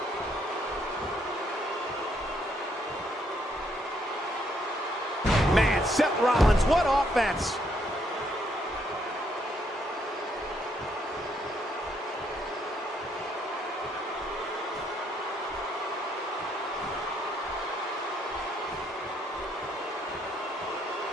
Man, Seth Rollins, what offense!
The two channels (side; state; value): both; normal; correlation 0.72